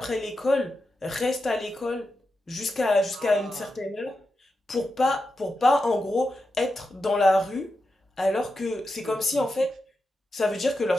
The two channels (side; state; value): both; normal; correlation 0.89